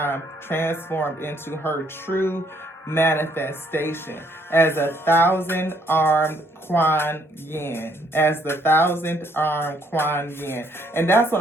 transformed into her true manifestation as a 1,000-armed Kuan Yin, as the 1,000th-armed Kuan Yin. And that's what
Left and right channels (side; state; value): both; normal; correlation 0.68